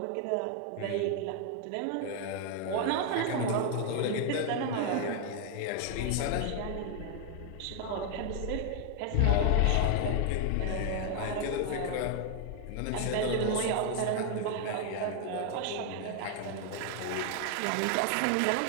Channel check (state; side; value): different; both; correlation 0.00